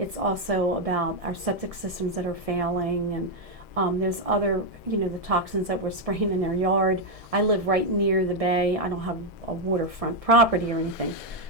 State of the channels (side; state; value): left; late; 1.7 ms